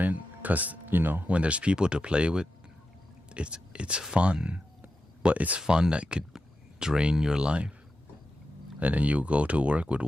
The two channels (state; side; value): normal; both; correlation 0.90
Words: because, you know, when there's people to play with, it's fun. But it's fun that could drain your life. And then you go to work with